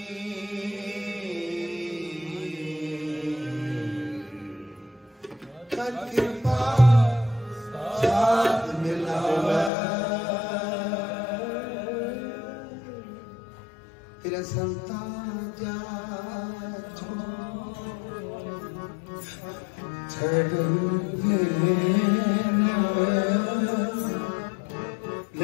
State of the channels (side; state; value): right; drops out; at 9.7 s